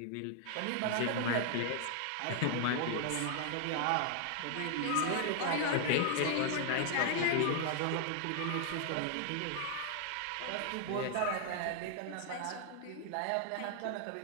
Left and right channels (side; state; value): both; different; correlation 0.00